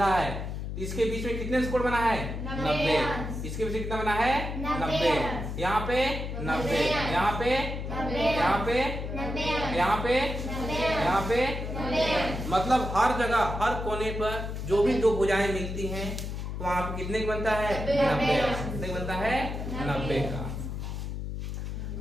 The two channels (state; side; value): noise; left; hum, 5 dB below the sound